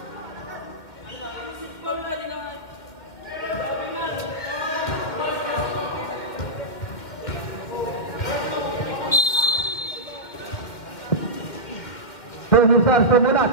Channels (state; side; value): late; right; 1.9 ms